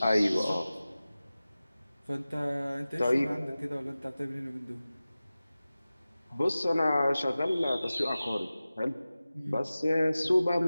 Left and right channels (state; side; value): inverted; both; correlation -0.96